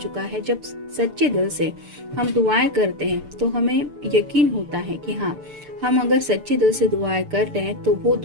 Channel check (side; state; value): left; late; 6.8 ms